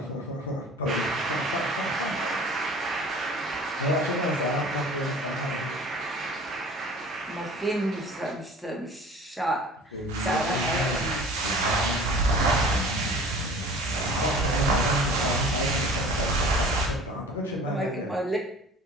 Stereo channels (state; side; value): normal; both; correlation 0.44